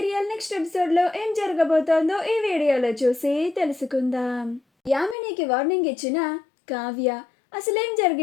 next ఎపిసోడ్లో ఏం జరగబోతోందో ఈ వీడియోలో చూసి తెలుసుకుందాం. యామినికి వార్నింగ్ ఇచ్చిన కావ్య అసలేం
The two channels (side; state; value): right; drops out; at 5.2 s